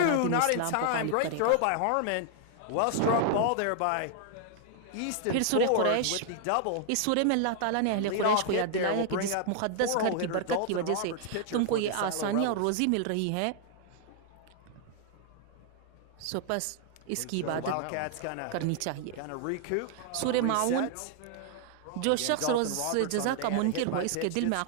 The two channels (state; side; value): different; both; correlation 0.00